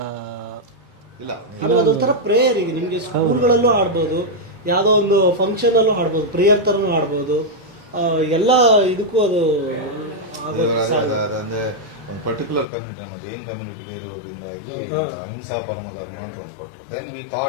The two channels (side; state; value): right; drops out; at 12.7 s